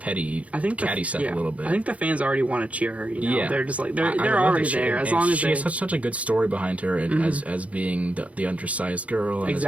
catty stuff a little bit. I think the fans already want to cheer her. You know? They're just like they're already there. As long as she has such a good story behind her, and as being the undersized girl, and as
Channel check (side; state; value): left; late; 0.066 ms